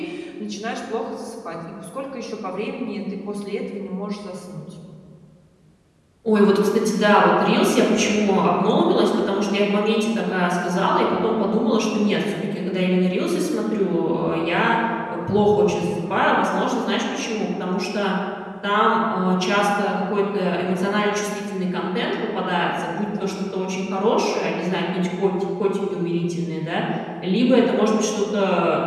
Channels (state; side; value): identical; both; correlation 1.00